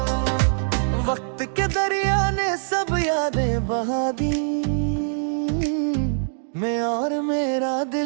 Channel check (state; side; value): silent; left; digital silence